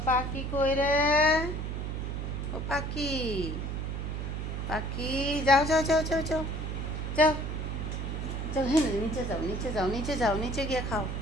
পাখি কই রে? ও পাখি, পাখি, যাও যাও যাও যাও যাও যাও যাও, হ্যাঁ নিচে যাও, নিচে যাও, নিচে যাও, নিচে গিয়ে খাও।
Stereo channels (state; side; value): noise; right; hum, 3 dB below the sound